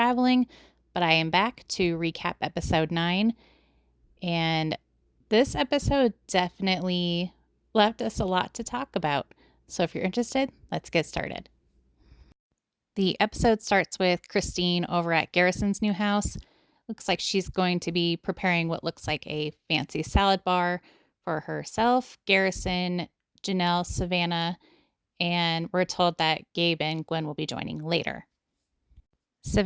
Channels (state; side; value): identical; both; correlation 1.00